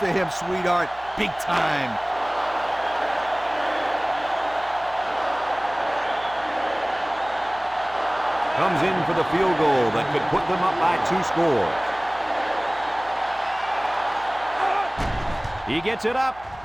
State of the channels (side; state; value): right; noise; hum, 23 dB below the sound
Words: him, sweetheart. Big time. Comes in for the field goal that could put them up by 2 scores. He gets it up,